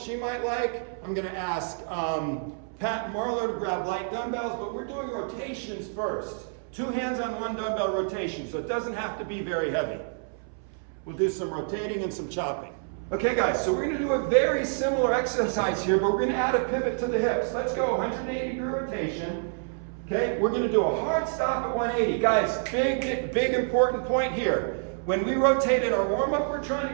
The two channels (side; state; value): left; silent; 60 dB below the other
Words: might like. I'm going to ask Pat and Marlo to grab light dumbbells, but we're doing rotations first. 2 hands on 1 dumbbell rotation, so it doesn't have to be very heavy. We'll do some rotating and some chopping. Okay guys, so we're going to do a very similar exercise here, but we're going to add a pivot to the hips. Let's go 180 degree rotation. Okay, we're going to do a hard stop at 180. Guys, big important point here. When we rotate in our warm-up, we're trying to